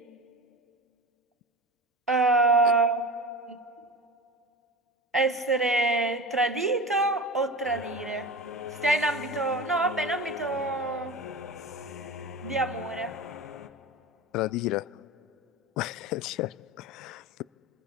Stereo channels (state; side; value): normal; both; correlation 0.30